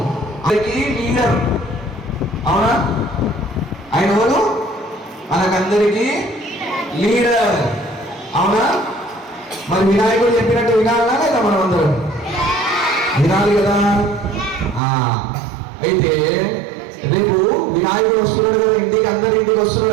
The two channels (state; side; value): drops out; left; at 14.8 s